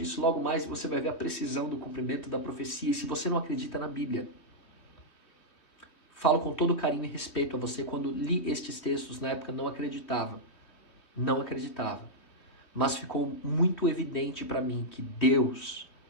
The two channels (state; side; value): late; right; 3.3 ms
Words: logo mais e você vai ver a precisão do cumprimento da profecia. E se você não acredita na Bíblia, falo com todo carinho e respeito a você, quando li estes textos na época não acreditava. Não acreditava. Mas ficou muito evidente para mim que Deus